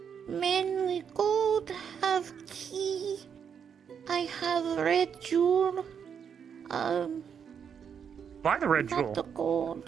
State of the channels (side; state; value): left; quieter; 7.4 dB